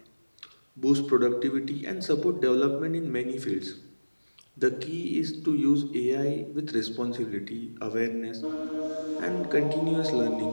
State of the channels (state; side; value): inverted; both; correlation -1.00